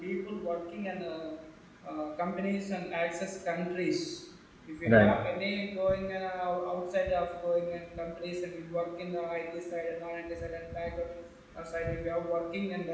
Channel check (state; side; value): identical; both; correlation 1.00